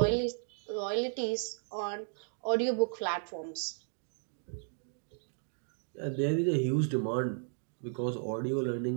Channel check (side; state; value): left; silent; digital silence